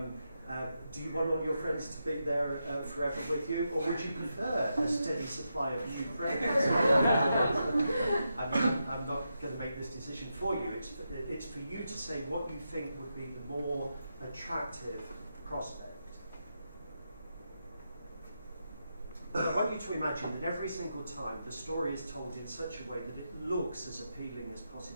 Do you want all your friends to be there forever with you, or would you prefer a steady supply of new friends? I'm not going to make this decision for you. It's for you to say what you think would be the more attractive prospect. I want you to imagine that every single time the story is told in such a way that it looks as appealing as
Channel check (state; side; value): inverted; both; correlation -0.86